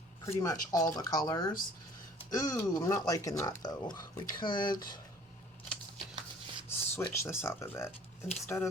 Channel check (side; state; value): both; normal; correlation 0.52